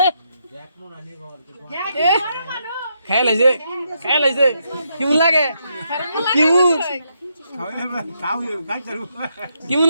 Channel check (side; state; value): both; inverted; correlation -0.79